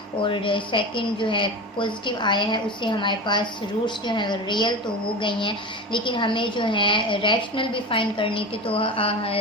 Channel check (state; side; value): normal; both; correlation 0.27